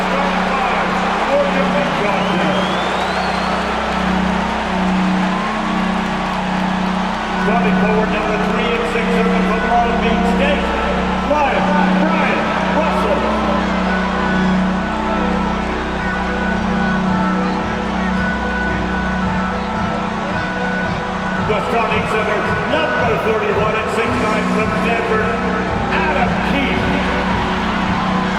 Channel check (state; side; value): identical; both; correlation 1.00